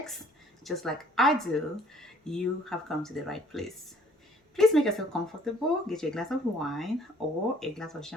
just like I do, you have come to the right place. Please make yourself comfortable, get you a glass of wine or a glass of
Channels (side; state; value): both; normal; correlation 0.58